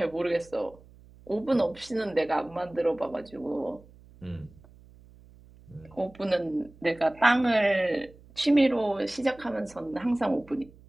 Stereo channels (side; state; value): right; noise; hum, 24 dB below the sound